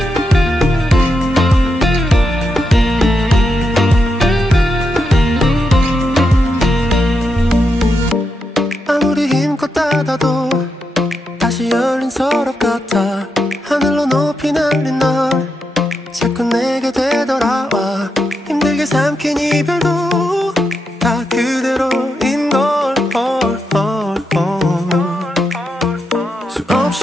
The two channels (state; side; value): normal; both; correlation 0.85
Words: 아무리 힘껏 닫아도 다시 열린 서랍 같아 하늘로 높이 날린 널 자꾸 내게 되돌아와 힘들게 삼킨 이별도 다 그대로인 걸